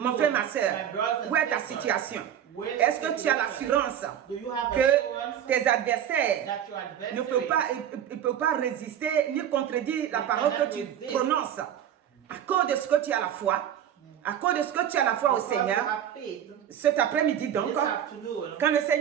frère, ma soeur, où est ta situation? Est-ce que tu as l'assurance que tes adversaires ne peuvent pas résister ni contredire la parole que tu prononces à cause de ce que tu as la foi? À cause de ce que tu as la foi au Seigneur, cet après-midi donc, quand le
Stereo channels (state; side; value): quieter; left; 9.8 dB